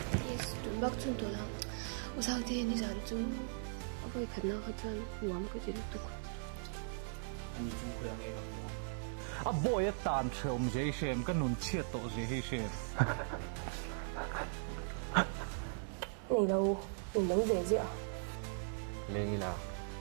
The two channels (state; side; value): silent; left; digital silence